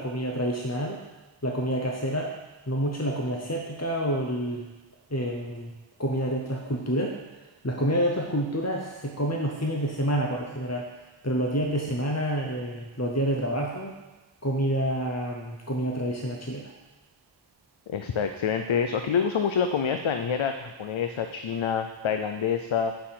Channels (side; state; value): both; normal; correlation 0.07